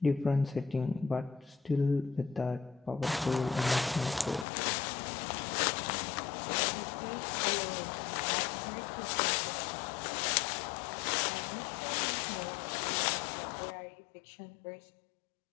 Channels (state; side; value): drops out; right; at 4.5 s